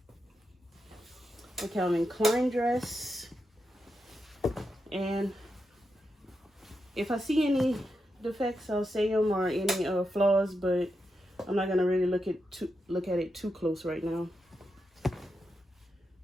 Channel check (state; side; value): normal; both; correlation 0.86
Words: A Calvin Klein dress. And if I see any defects, I'll say them, or any flaws, but I'm not gonna really look at it too close right now.